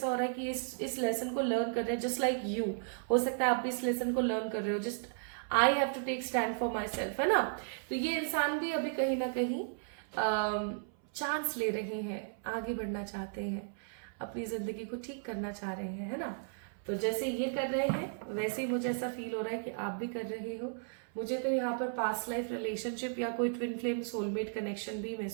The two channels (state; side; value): silent; left; 55 dB below the other